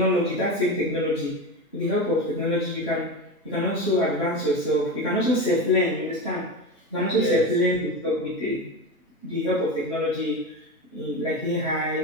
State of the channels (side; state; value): both; normal; correlation 0.22